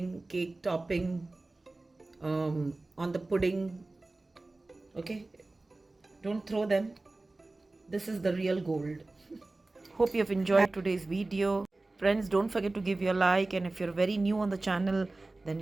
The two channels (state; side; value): quieter; left; 3.1 dB